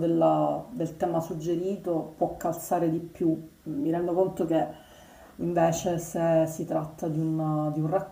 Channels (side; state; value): both; identical; correlation 1.00